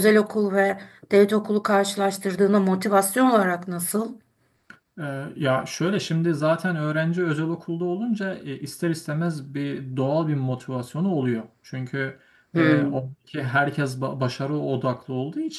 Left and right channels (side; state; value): both; identical; correlation 1.00